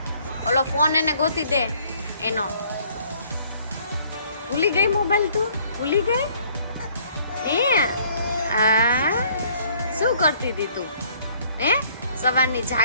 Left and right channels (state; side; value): inverted; both; correlation -0.60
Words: ઓલો ફોન એને ગોતી દે એનો. ભૂલી ગઈ મોબાઈલ? તું ભૂલી ગઈ? શું કરતી હતી તું? સવારની